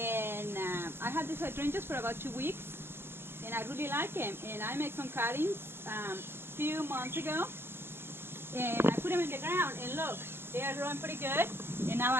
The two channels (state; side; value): late; left; 0.11 ms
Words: I had these hydrangeas for about 2 weeks, and I really like them. And I made some cuttings a few months ago, and I put them in the ground, and look, they are growing pretty good. And now I